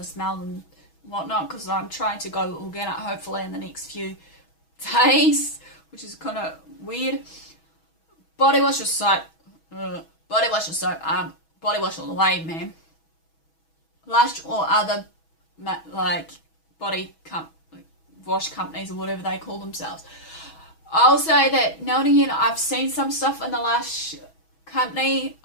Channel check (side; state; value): right; late; 6.2 ms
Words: smell and whatnot, because I'm trying to go organic hopefully in the next few days, which is kind of weird. Body wash or soap? Body wash or soap? Body wash all the way, man. Lush or other like body wash companies or whatever they call themselves. I'll say that now and again I've seen some stuff in the Lush company.